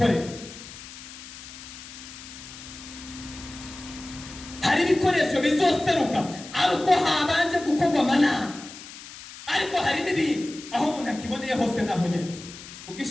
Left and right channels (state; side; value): noise; left; hiss, 15 dB below the sound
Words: Hari ibikoresho bizoseruka ari uko habanje gukorwa amanama, ariko hari n'ibindi aho umuntu akiboneye hose naho nyene